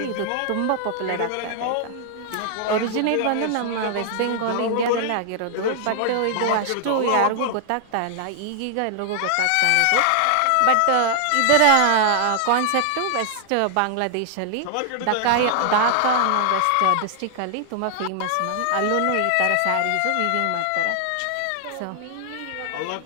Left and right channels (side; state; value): both; different; correlation 0.00